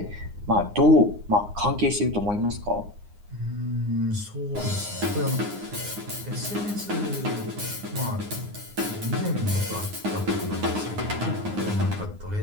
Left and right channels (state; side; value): late; left; 9.7 ms